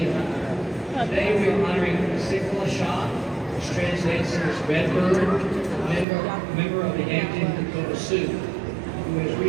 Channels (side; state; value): left; drops out; at 6.1 s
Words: Today we are honoring Zitkale Sa Hoop, which translates as Redbird, member of the Yankton Sioux, who has